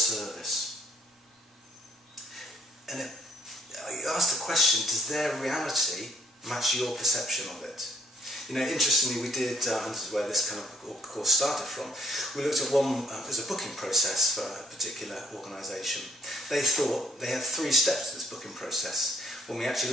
And you ask the question, does their reality match your perception of it? You know, interestingly, we did, and this is where this kind of course started from, we looked at one as a booking process for a particular organisation. They thought they had 3 steps to this booking process. When we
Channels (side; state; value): both; normal; correlation 0.66